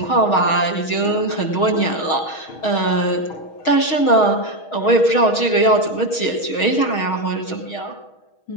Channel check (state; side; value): late; right; 6.3 ms